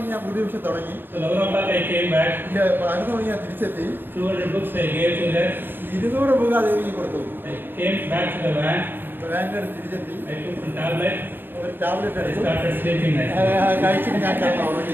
ഞാൻ പുതിയ വിഷയം തുടങ്ങി. So 11 o'clock I came back. 11 മണിക്ക് ഞാൻ തിരിച്ചെത്തി. 200 books I gave to her. 200 book ദേവിക്ക് കൊടുത്തു. I came back to the van. വാനിൽ തിരിച്ചെത്തി. I took some tablet. ഒരു ടാബ്ലറ്റ് I എടുത്തു. started sleeping. കഴിച്ചിട്ട് ഞാൻ കിടന്നു ഉറങ്ങി.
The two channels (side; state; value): left; late; 0.097 ms